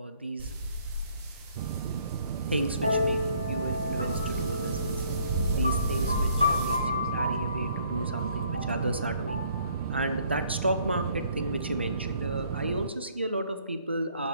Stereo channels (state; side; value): inverted; both; correlation -0.63